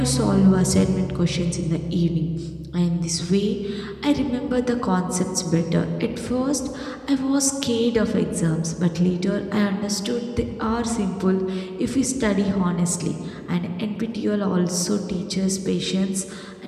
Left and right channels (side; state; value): both; identical; correlation 1.00